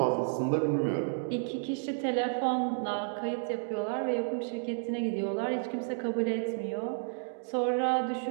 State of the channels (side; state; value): left; silent; digital silence